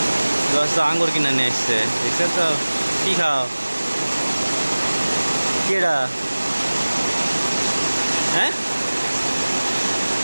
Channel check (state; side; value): inverted; both; correlation -1.00